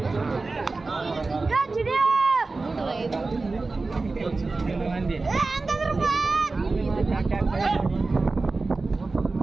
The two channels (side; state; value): left; quieter; 3.7 dB